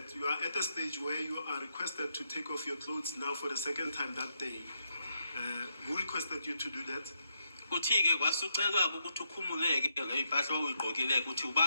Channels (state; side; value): inverted; both; correlation -0.80